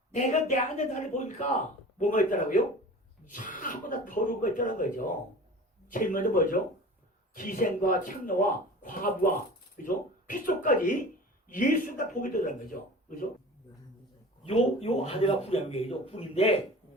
내가 내 안에 나를 보니까 뭐가 있더라고요? 전부 다 더러운 거 있다는 거죠. 제일 먼저 뭐죠? 기생과 창녀와 과부와, 그죠? 핏속까지 예수가 보게 되는 거죠. 그죠? 요 아내가 궁이죠. 궁인데,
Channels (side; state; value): both; normal; correlation 0.38